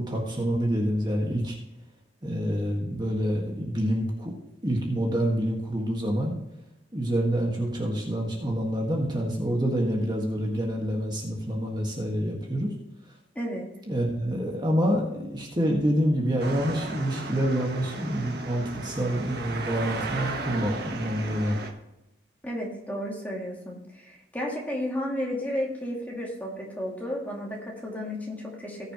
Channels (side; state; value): both; normal; correlation 0.82